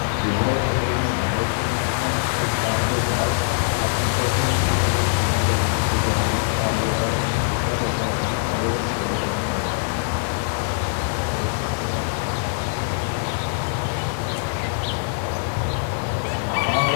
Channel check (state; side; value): silent; right; digital silence